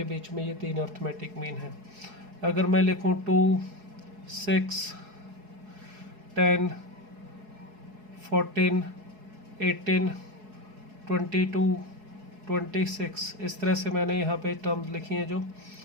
बीच में ये 3 अर्थमेटिक मीन है। अगर मैं लिखूँ 2, 6, 10, 14, 18, 22, 26, इस तरह से मैंने यहाँ पे टर्म्स लिखी हैं। जो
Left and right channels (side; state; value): left; late; 4.7 ms